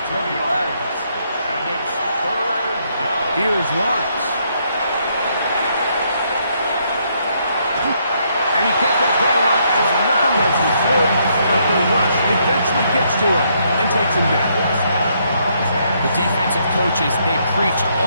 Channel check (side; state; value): both; inverted; correlation -0.73